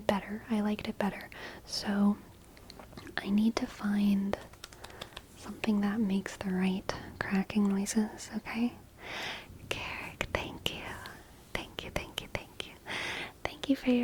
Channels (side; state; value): both; identical; correlation 1.00